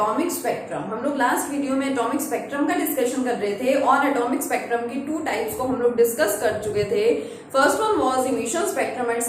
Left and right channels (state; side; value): identical; both; correlation 1.00